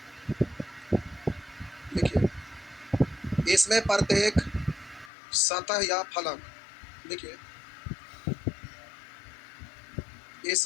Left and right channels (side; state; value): right; drops out; at 5.1 s